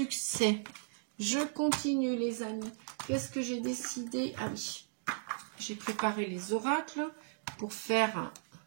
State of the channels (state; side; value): silent; left; digital silence